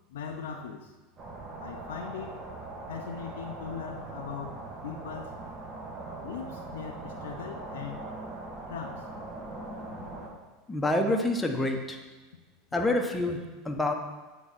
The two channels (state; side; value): normal; both; correlation 0.47